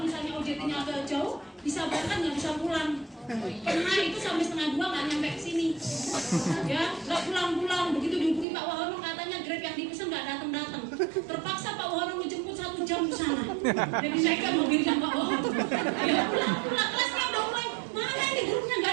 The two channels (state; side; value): drops out; left; at 8.5 s